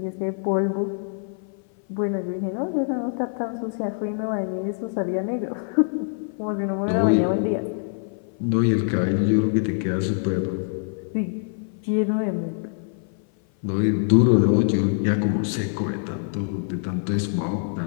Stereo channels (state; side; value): silent; right; 57 dB below the other